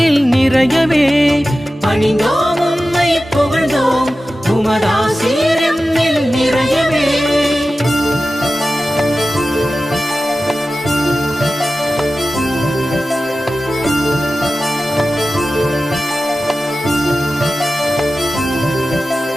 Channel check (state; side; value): normal; both; correlation 0.94